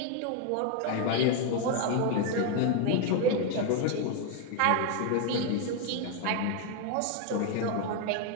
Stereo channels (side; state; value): both; different; correlation 0.01